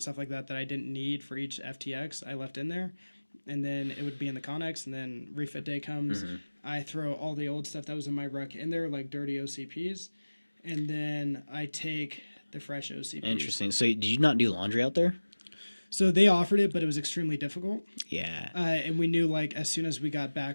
stuff like that I didn't need for each FTX, I left in there, and then it would be in the Connex. And then refit day comes, I throw all the old stuff that was in my ruck in there, like dirty OCPs, and then I take the fresh OCPs. Interesting. So did you not do laundry out there? So they offered it, but it was extremely difficult. Yeah. And we knew like as soon as we got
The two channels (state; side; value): inverted; both; correlation -1.00